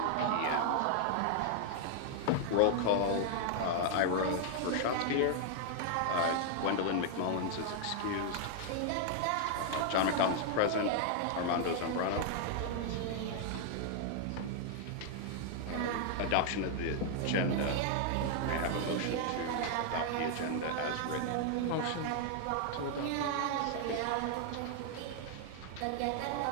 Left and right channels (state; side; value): different; both; correlation 0.00